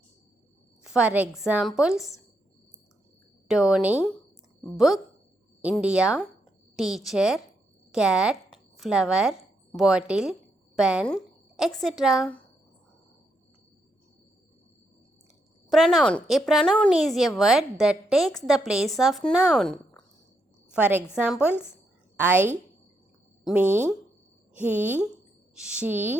For examples, Tony, book, India, teacher, cat, flower, bottle, pen, etc. Pronoun. A pronoun is a word that takes the place of noun. For examples, I, me, he,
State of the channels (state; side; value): normal; both; correlation 0.80